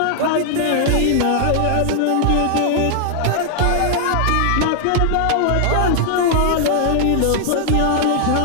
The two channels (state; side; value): different; both; correlation -0.01